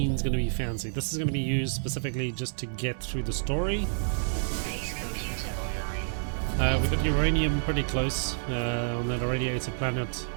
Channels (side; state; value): left; silent; 59 dB below the other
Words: going to be fancy. This is going to be used specifically just to get through the story. We got uranium pretty close on that irradiated planet